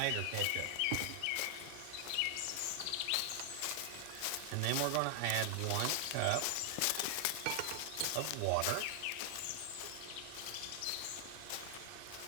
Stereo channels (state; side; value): different; both; correlation 0.00